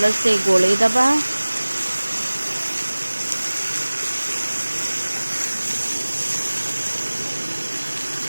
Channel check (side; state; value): both; inverted; correlation -1.00